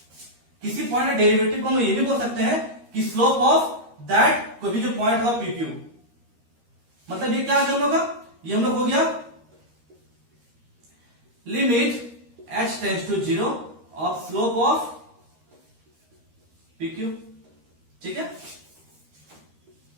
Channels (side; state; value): left; late; 13 ms